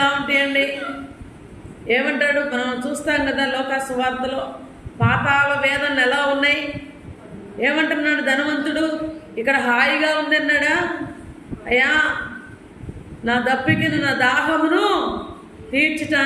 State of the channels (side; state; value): both; identical; correlation 1.00